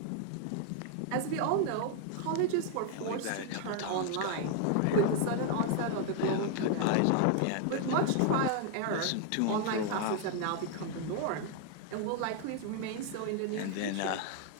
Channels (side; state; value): both; different; correlation 0.00